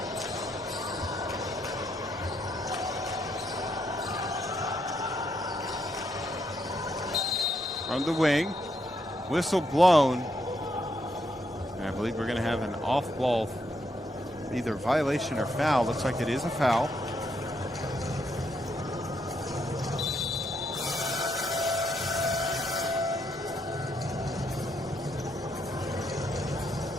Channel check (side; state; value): both; normal; correlation 0.77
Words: From the wing, whistle blown. And I believe we're going to have an off-ball, either violation or foul. Looks like it is a foul.